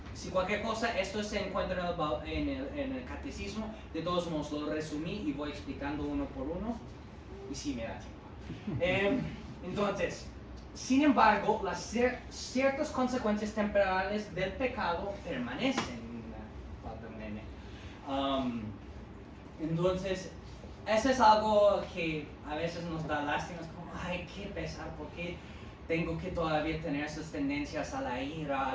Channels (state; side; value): identical; both; correlation 1.00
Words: Si cualquier cosa, esto se encuentra en el catecismo. De todos modos, lo resumí y voy explicando uno por uno. Y sí me da tiempo. Entonces, sin embargo, las ciertas consecuencias temporales del pecado permanecen. Falta un nene. Entonces, eso es algo que a veces nos da lástima. Es como, ay, qué pesar, ¿por qué tengo que todavía tener esas tendencias a la ira, a